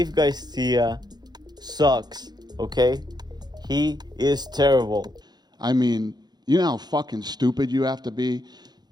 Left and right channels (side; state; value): left; late; 0.20 ms